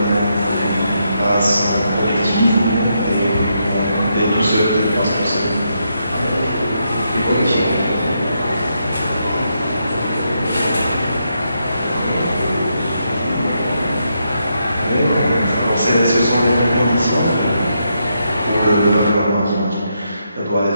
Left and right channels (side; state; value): both; inverted; correlation -0.81